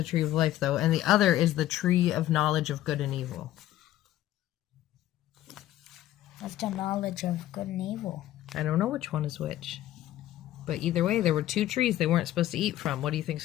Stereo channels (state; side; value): quieter; right; 13.9 dB